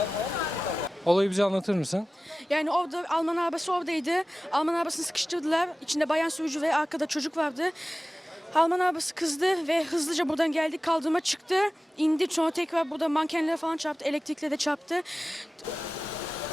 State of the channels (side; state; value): both; normal; correlation 0.96